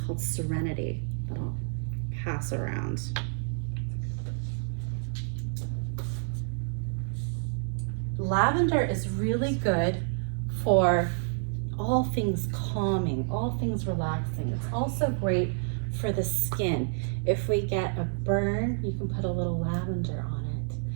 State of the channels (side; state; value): left; silent; 59 dB below the other